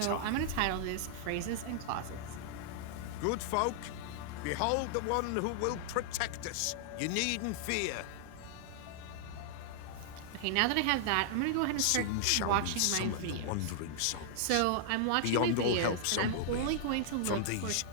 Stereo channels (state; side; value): different; both; correlation -0.01